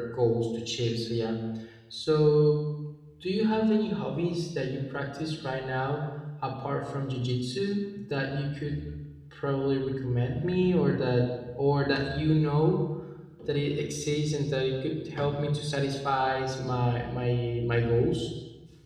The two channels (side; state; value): both; identical; correlation 1.00